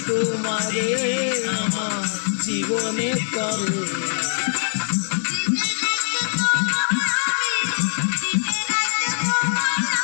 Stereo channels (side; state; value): right; silent; digital silence